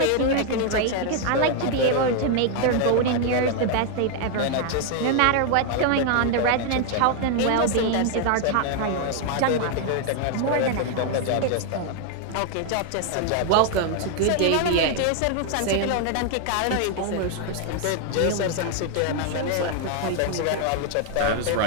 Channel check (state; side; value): different; both; correlation 0.00